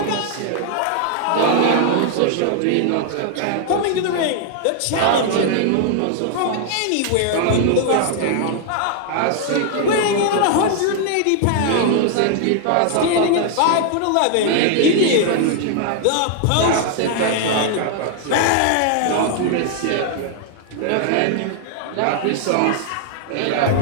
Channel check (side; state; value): both; different; correlation 0.00